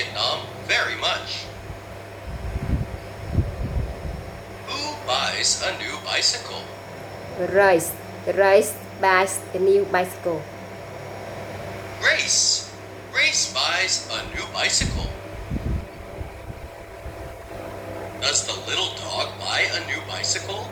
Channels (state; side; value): identical; both; correlation 1.00